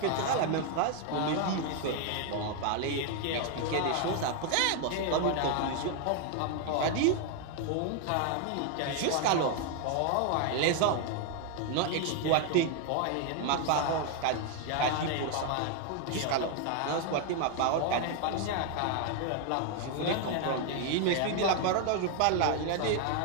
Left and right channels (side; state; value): both; different; correlation 0.01